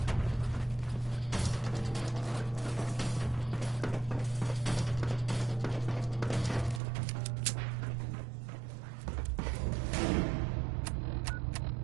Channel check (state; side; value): drops out; left; at 6.8 s